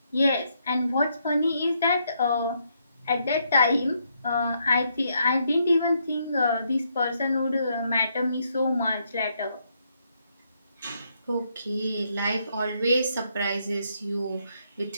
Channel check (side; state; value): both; inverted; correlation -0.75